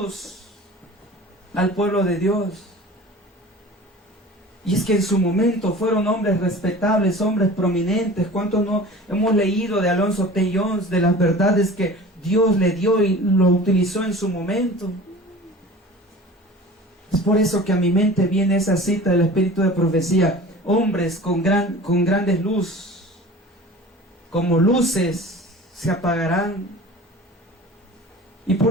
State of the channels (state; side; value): normal; both; correlation 0.40